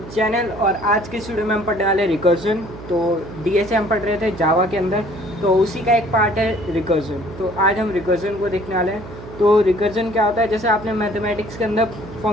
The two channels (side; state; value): right; noise; hum, 14 dB below the sound